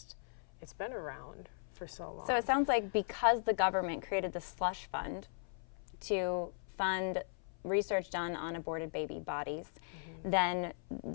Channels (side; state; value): right; silent; 53 dB below the other